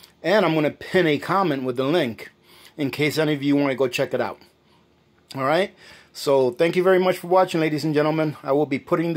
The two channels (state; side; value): identical; both; correlation 1.00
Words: and I'm going to pin a comment with the link in case any of you want to go check it out. Alright, so thank you very much for watching, ladies and gentlemen. I will be putting